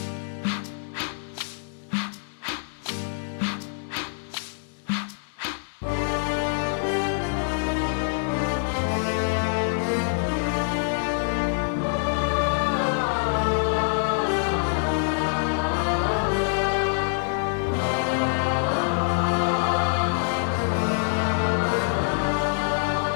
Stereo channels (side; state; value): right; silent; digital silence